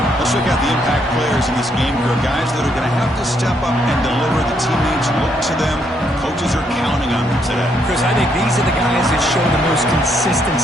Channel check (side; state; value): both; normal; correlation 0.73